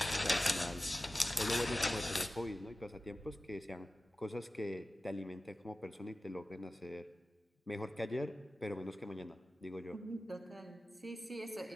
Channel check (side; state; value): both; normal; correlation 0.95